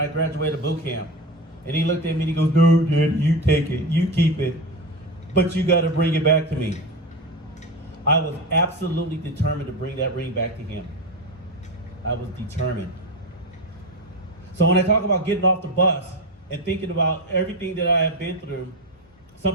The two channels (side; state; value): both; normal; correlation 0.20